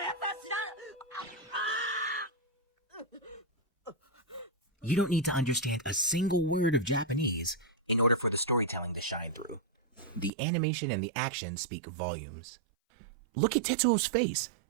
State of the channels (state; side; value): drops out; left; at 10.3 s